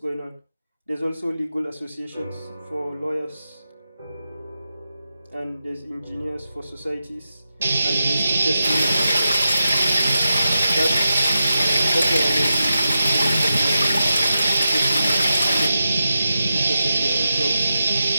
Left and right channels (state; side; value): inverted; both; correlation -0.90